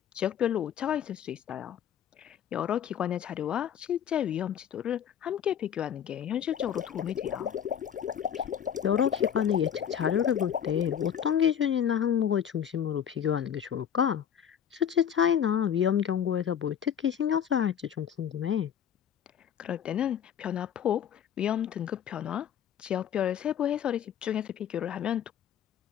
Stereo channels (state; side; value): quieter; right; 9.0 dB